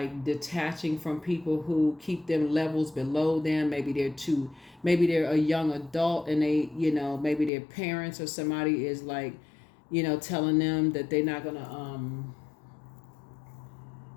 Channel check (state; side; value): drops out; right; at 7.5 s